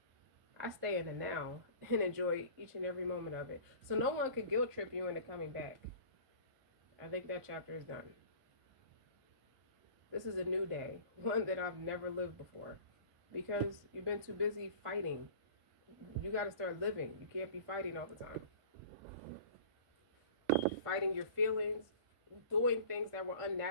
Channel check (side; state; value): left; late; 1.5 ms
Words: I stay in the now and enjoy each and every moment of it. So no one could guilt trip you into coming back. I think that chapter is done. This is a new day, one that I've never lived before. Because you've been too busy fighting. You got to start living. You can't be fighting all the time. Fighting your feelings, doing things that were